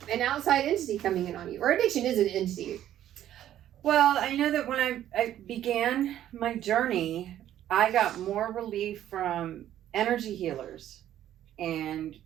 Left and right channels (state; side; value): quieter; left; 11.8 dB